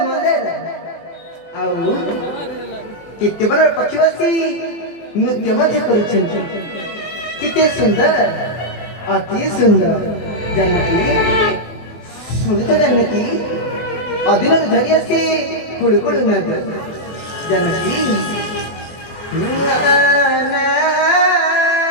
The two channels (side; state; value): right; late; 24 ms